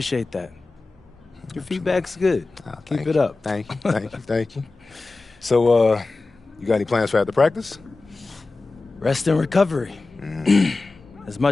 that. Your feedback's good. Keep it up. Thank you, thank you, thank you. So, you got any plans for after practice? Rest and recovery. As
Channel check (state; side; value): quieter; right; 3.5 dB